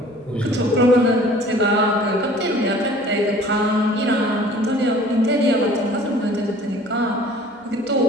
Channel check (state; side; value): normal; both; correlation 0.49